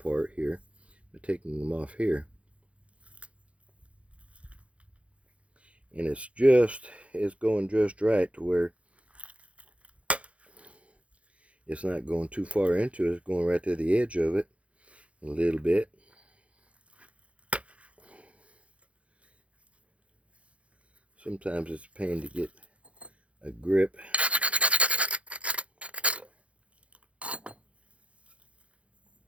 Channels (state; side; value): late; left; 0.062 ms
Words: here, but taking them off here. And it's going just right to where it's not going too far into it. It's going right to the edge of it a little bit. Sometimes it's a pain to get a grip.